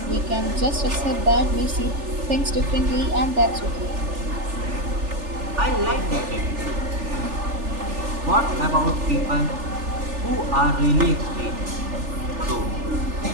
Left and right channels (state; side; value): late; left; 3.4 ms